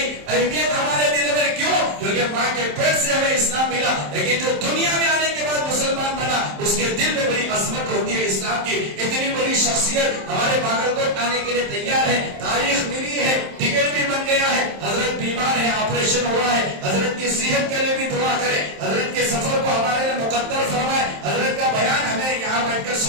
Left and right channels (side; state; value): left; late; 27 ms